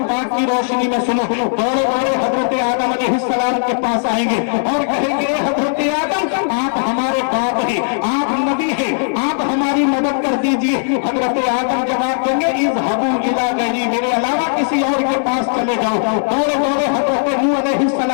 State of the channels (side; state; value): right; silent; digital silence